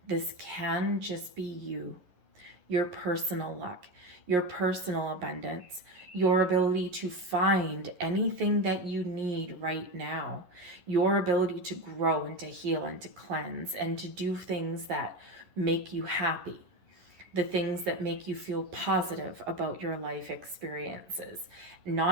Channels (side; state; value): left; late; 11 ms